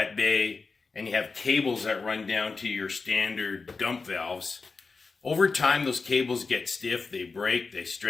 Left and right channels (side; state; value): right; quieter; 4.4 dB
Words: bay and you have cables that run down to your standard dump valves, over time those cables get stiff, they break, they